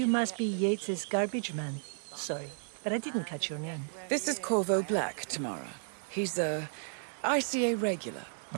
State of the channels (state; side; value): silent; left; digital silence